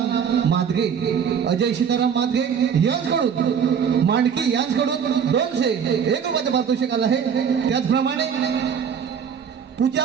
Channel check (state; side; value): quieter; left; 7.4 dB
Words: मादगे, अजय सीताराम मादगे यांच्याकडून मांडकी यांच्याकडून 201 रुपयाचं पारितोषिक आलं आहे. त्याचप्रमाणे पूजा